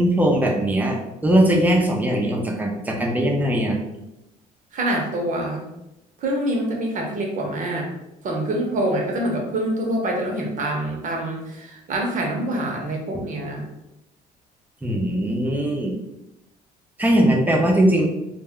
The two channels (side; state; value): both; normal; correlation 0.65